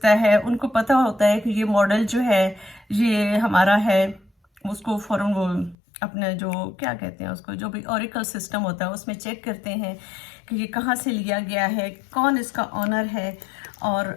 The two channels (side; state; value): right; drops out; at 5.8 s